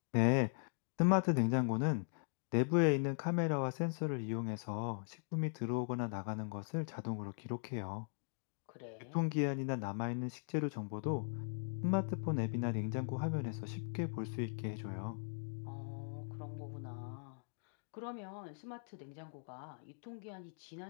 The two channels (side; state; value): right; silent; digital silence